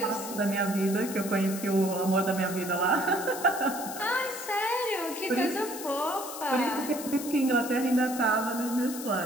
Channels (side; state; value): left; noise; hiss, 10 dB below the sound